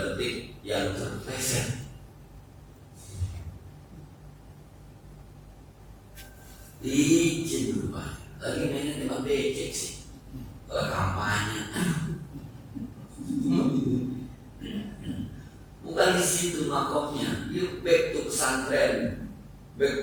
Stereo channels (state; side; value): identical; both; correlation 1.00